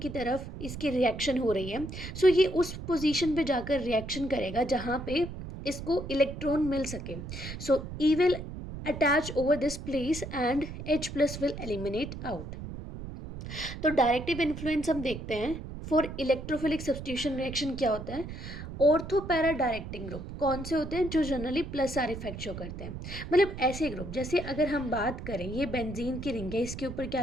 की तरफ इसकी रिएक्शन हो रही है, सो ये उस पोजीशन पे जाकर रिएक्शन करेगा जहाँ पे इसको इलेक्ट्रॉन मिल सके. सो E will attach over this place and H+ will eliminate out. तो डायरेक्टिव इन्फ्लुएंस हम देखते हैं फॉर इलेक्ट्रोफिलिक सब्स्टिट्यूशन रिएक्शन. क्या होता है? ऑर्थो पैरा डायरेक्टिंग ग्रुप कौन से होते हैं? जो generally plus are effect show करते हैं. मतलब ऐसे ग्रुप, जैसे अगर हम बात करें ये बेंजीन की रिंग है, इसके ऊपर क्या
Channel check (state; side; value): noise; right; rumble, 9 dB below the sound